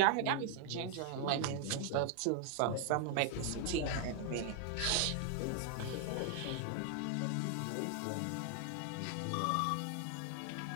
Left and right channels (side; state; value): both; different; correlation 0.00